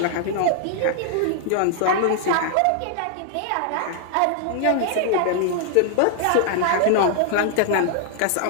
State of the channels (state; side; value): different; both; correlation 0.00